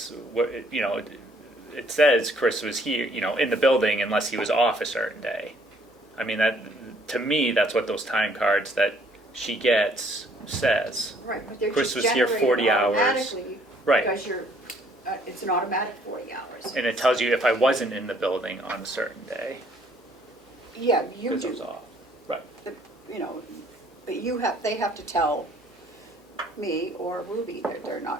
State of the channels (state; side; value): normal; both; correlation 0.63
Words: you know, it says Chris was here, you know, in the building unless he was off a certain day. I mean, that, to me, that's what those time cards that she gets says. Right, but they're Chris just was here generated 40 hours. automatically Right. because it's an automatic 40 hours. And it tells you if I wasn't in the building on a certain day, Yeah, you because I was do, off. Right. you know, but they have to tell me or Ruby that they're